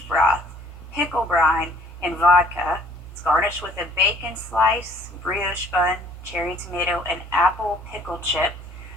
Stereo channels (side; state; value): both; normal; correlation 0.58